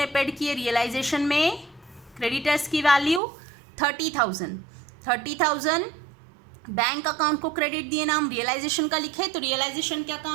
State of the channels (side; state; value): left; drops out; at 3.2 s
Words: पेड किए रियलाइजेशन में क्रेडिटर्स की वैल्यू 30,000 बैंक अकाउंट को क्रेडिट दिए, नाम रियलाइजेशन का लिखे, तो रियलाइजेशन के